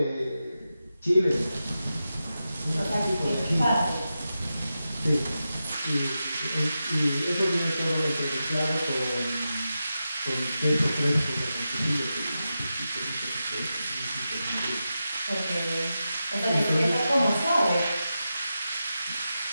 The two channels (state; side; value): inverted; both; correlation -0.91